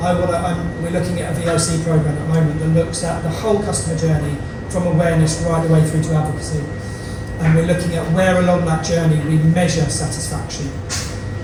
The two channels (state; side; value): identical; both; correlation 1.00